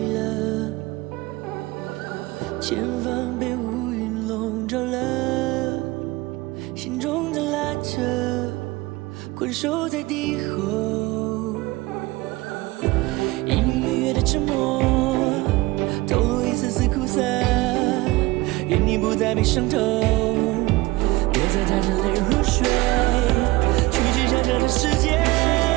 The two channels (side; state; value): left; quieter; 20.4 dB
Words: 前方被乌云笼罩了，心中在拉扯，困守在敌后，隐隐约约的沉默，透露一丝丝苦涩，愿你不再被伤透，别再带着泪入睡，去接下这个世界，